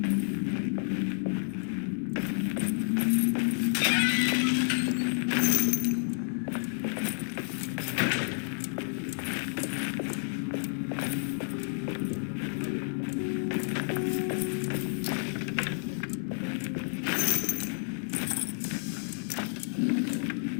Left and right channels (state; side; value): silent; right; digital silence